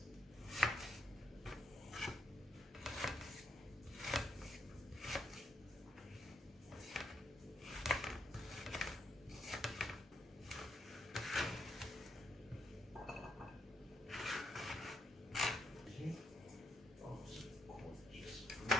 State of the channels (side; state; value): both; normal; correlation 0.78